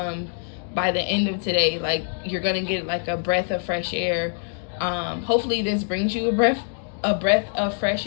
by the end of today. Like, you're gonna get like a breath of fresh air. Hopefully this brings you a breath of fresh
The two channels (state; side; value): silent; right; digital silence